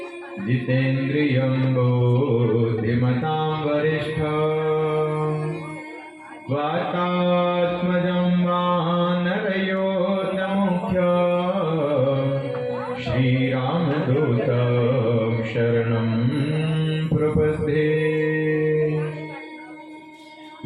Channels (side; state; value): both; identical; correlation 1.00